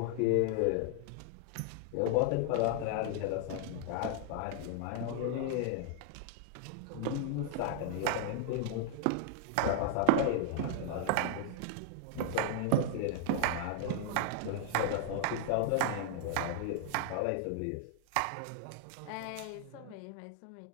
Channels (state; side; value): different; both; correlation 0.00